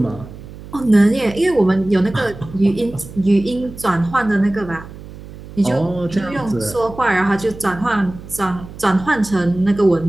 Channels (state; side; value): noise; right; hum, 15 dB below the sound